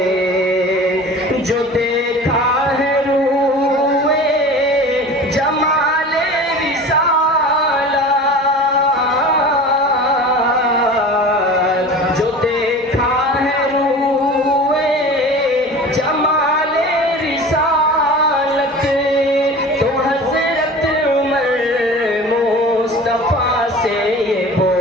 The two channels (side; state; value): both; normal; correlation 0.38